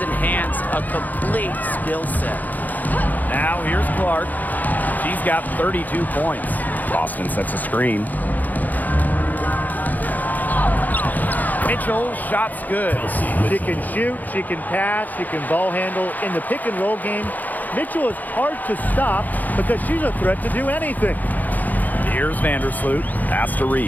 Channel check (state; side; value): late; right; 0.082 ms